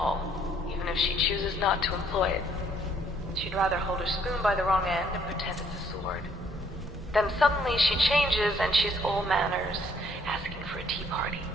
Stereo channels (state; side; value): normal; both; correlation 0.65